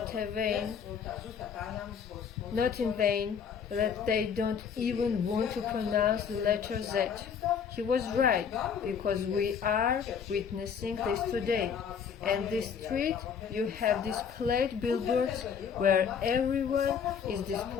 in vain, that they don't even want to pronounce the letter Z. He was right, because we are witnessing this today. And this street, you have displayed billboards where everyone is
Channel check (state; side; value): quieter; right; 7.1 dB